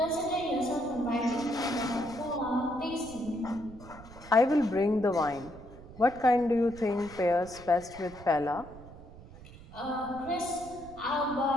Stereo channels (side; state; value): right; noise; rumble, 18 dB below the sound